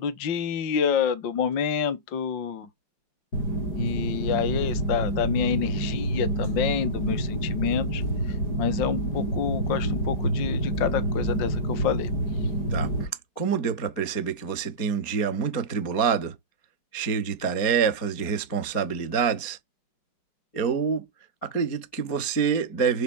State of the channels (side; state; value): right; late; 4.3 ms